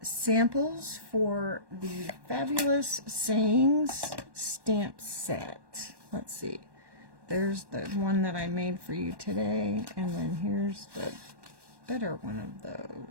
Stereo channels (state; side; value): late; left; 1.1 ms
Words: samples for the Fabulous Sayings stamp set. Let's see. There's the one that I made for you today, and then here's the better one of